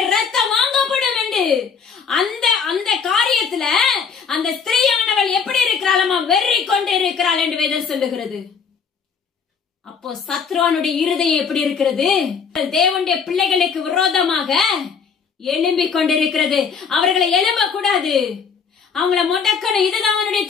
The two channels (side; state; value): right; quieter; 6.2 dB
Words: ரத்தம் வாங்கப்படும் என்று அந்த காரியத்துல அந்த ஸ்திரீயானவள் எப்படி இருக்கிறாளமா? வெறி கொண்டு இருக்கிறாள் என்று வேதம் சொல்லுகிறது. அப்போ சத்ருவானுடைய இருதயம் எப்படி இருக்கிறது? தேவனுடைய பிள்ளைகளுக்கு விரோதமாக எழும்பிக் கொண்டிருக்கிறது. அவர்களை எழும்ப கூடாது, அவங்கள முடக்கணும். இதுதான் அவனுடைய